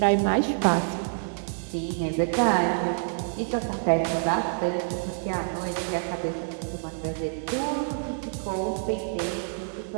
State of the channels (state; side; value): silent; left; 60 dB below the other